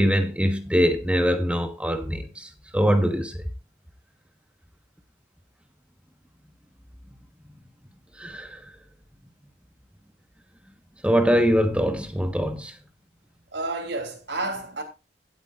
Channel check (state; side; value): normal; both; correlation 0.83